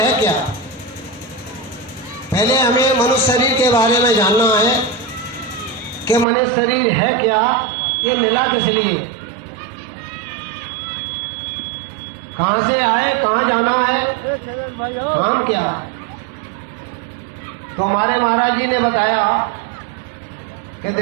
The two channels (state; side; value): drops out; left; at 6.2 s